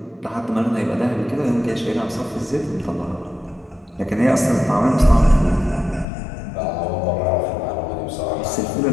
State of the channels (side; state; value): right; drops out; at 6.1 s